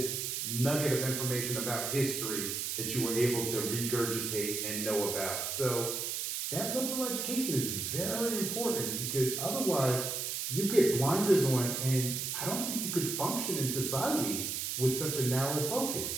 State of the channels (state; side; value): noise; right; hiss, 2 dB below the sound